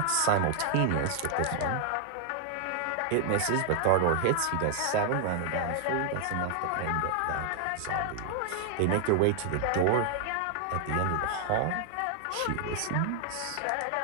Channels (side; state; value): both; different; correlation 0.00